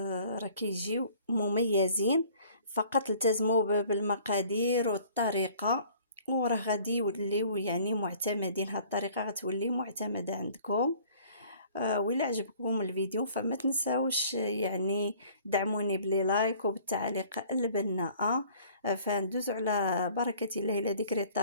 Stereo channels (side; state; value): both; inverted; correlation -0.54